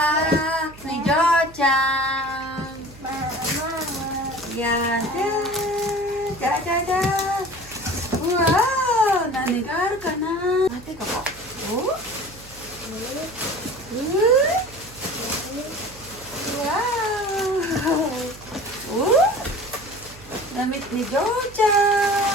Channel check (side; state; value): right; noise; hum, 20 dB below the sound